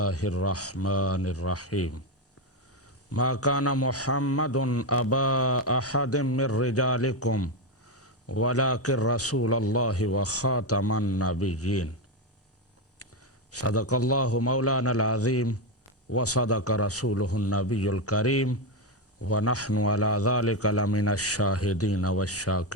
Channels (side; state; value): both; normal; correlation 0.09